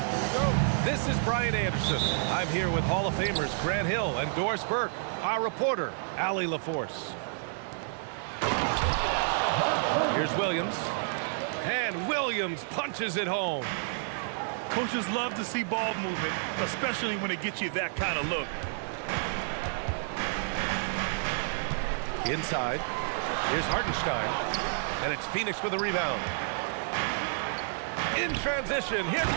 This is Brian Anderson. I'm here with Hall of Famers Grant Hill and Doris Burke. Our reporter, Allie LaForce. Here's Williams. And Williams punches it home. Coaches love to see ball movement, especially when it gets you that kind of look. Inside. Here's Hartenstein. And it's Phoenix with a rebound. In transition, here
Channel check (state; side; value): silent; left; digital silence